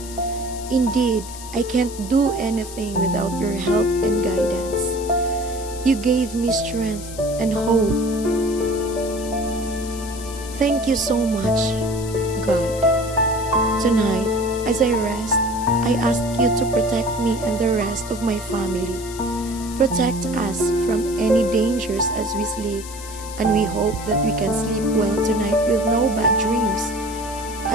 Indeed, I can't do anything without your help and guidance. You gave me strength and hope. Thank you so much, God. Tonight, as I rest, I ask you to protect me and the rest of my family. Protect us from any dangers as we sleep, and we hope that we can sleep well tonight with no bad dreams.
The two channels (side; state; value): left; noise; hiss, 14 dB below the sound